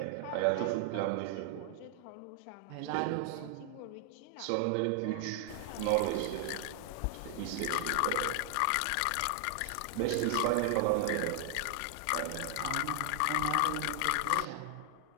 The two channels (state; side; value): different; both; correlation 0.00